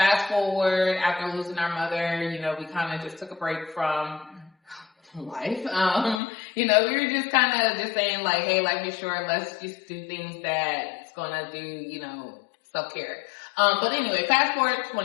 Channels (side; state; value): right; drops out; at 6.2 s